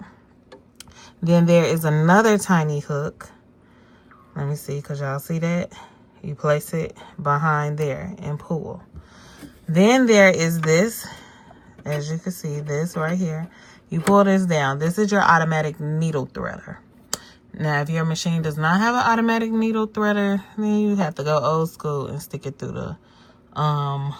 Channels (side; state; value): both; identical; correlation 1.00